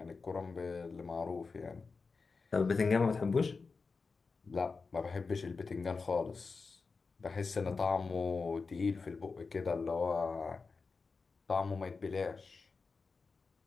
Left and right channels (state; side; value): quieter; right; 4.5 dB